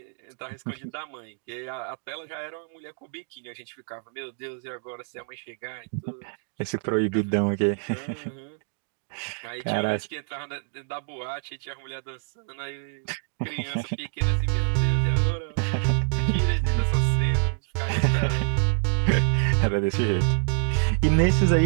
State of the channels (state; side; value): silent; left; 60 dB below the other